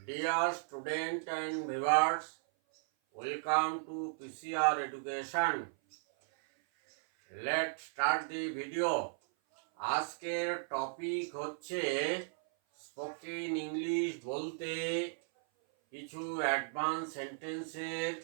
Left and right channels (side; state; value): left; silent; 54 dB below the other